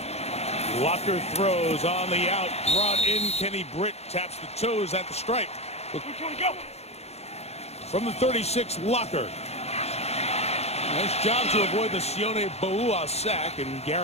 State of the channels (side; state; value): right; late; 0.31 ms